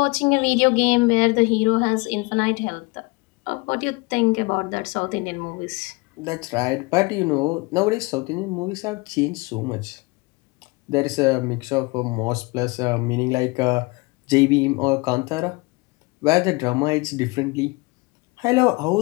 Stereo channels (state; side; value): quieter; right; 25.8 dB